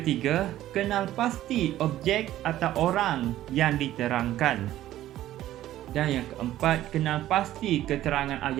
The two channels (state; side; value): quieter; left; 13.6 dB